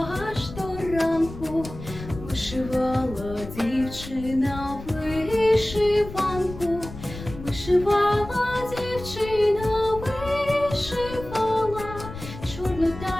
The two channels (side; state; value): left; noise; rumble, 12 dB below the sound